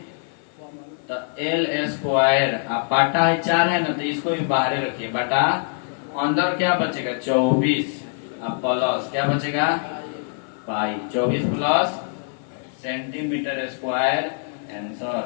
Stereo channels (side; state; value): right; silent; 57 dB below the other